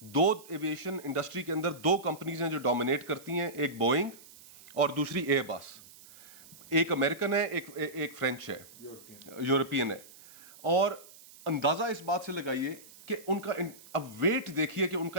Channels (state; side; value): noise; right; hiss, 21 dB below the sound